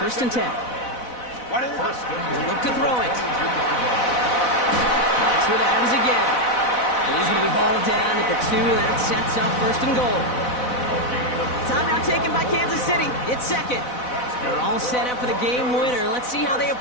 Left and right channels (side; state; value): right; late; 4.0 ms